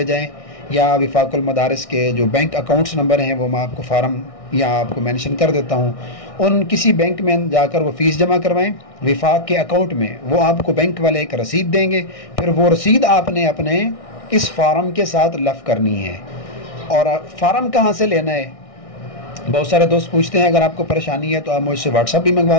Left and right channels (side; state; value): right; late; 1.6 ms